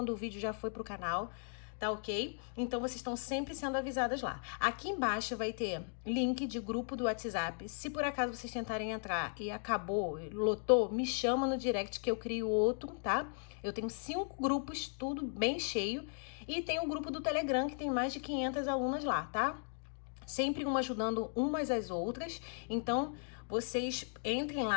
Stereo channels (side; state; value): right; silent; 53 dB below the other